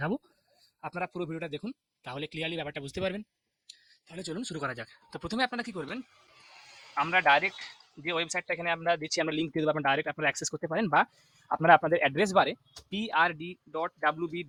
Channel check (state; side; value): identical; both; correlation 1.00